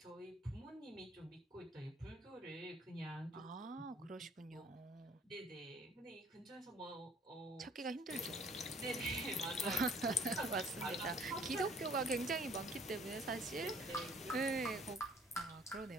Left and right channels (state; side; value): normal; both; correlation 0.57